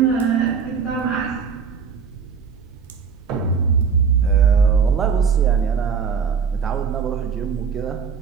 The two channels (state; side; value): quieter; left; 6.3 dB